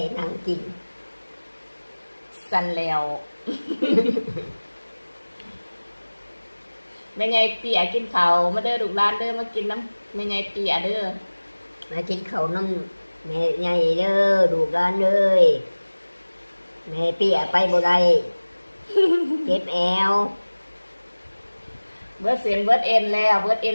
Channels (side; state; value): both; inverted; correlation -1.00